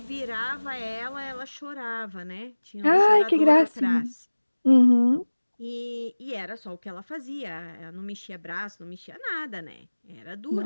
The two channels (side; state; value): both; inverted; correlation -1.00